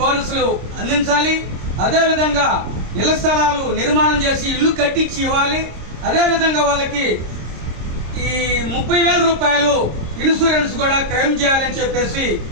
అందించాలి, అదేవిధంగా ఇళ్ల స్థలాలు నిర్మాణం చేసి ఇల్లు కట్టించి ఇవ్వాలి, అదేవిధంగా వాళ్ళకి ఈ 30,000 రూపాయలు ఇన్సూరెన్స్ కూడా క్లెయిమ్ చేయాలని చెప్పేసి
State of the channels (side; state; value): left; late; 26 ms